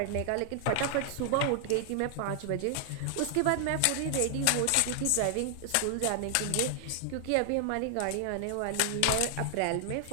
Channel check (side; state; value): both; different; correlation 0.00